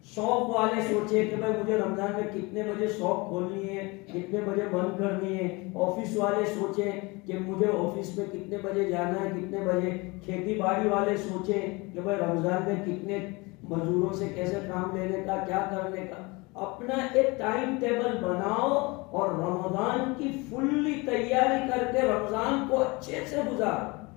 شاپ والے سوچے کہ بھائی مجھے رمضان میں کتنے بجے شاپ کھولنی ہے، کتنے بجے بند کرنی ہے. آفس والے سوچیں کہ مجھے آفس میں کتنے بجے جانا ہے، کتنے بجے. کھیتی باڑی والے سوچیں کہ بھائی رمضان میں کتنے مزدوروں سے کیسے کام لینے کا، کیا کرنے کا. اپنا ایک ٹائم ٹیبل بناؤ اور رمضان کی فلی تیاری کر کے رمضان کو اچھے سے گزارو.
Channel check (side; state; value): right; quieter; 25.6 dB